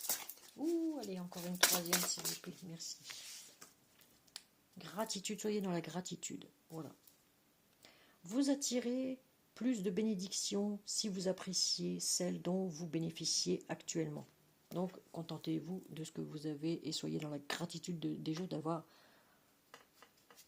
Ouh, allez, encore une troisième, s'il vous plaît. Merci. Gratitude, soyez dans la gratitude. Voilà. Vous attirez plus de bénédictions si vous appréciez celles dont vous bénéficiez actuellement. Donc, contentez-vous de ce que vous avez et soyez dans la gratitude des choses d'avoir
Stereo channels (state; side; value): identical; both; correlation 1.00